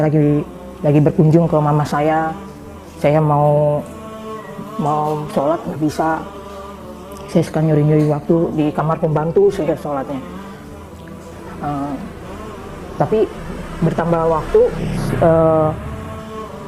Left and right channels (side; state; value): both; identical; correlation 1.00